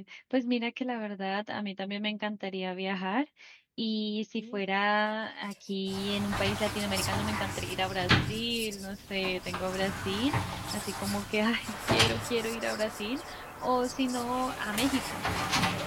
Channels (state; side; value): identical; both; correlation 1.00